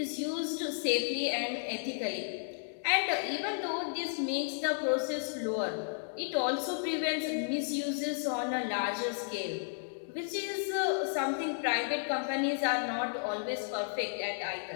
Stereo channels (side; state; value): right; silent; digital silence